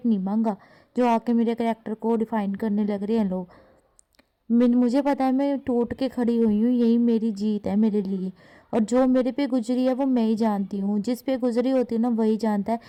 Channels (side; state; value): both; identical; correlation 1.00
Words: नहीं मांगा जो आके मेरे करैक्टर को डिफाइन करने लग रहे हैं लोग। मुझे पता है मैं टूट के खड़ी हुई हूँ, यही मेरी जीत है मेरे लिए। और जो मेरे पे गुजरी है वो मैं ही जानती हूँ, जिस पे गुजरी होती है ना वही जानता है।